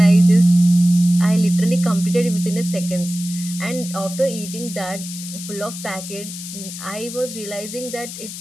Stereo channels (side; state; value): left; noise; hiss, 10 dB below the sound